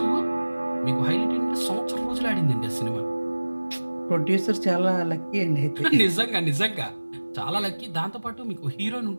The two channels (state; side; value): inverted; both; correlation -1.00